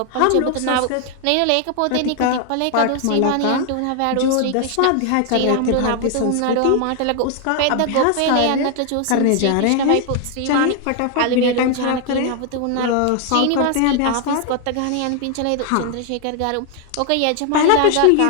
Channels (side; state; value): both; different; correlation 0.00